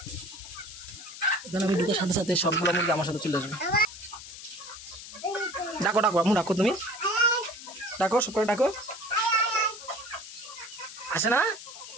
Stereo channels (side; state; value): left; noise; hiss, 13 dB below the sound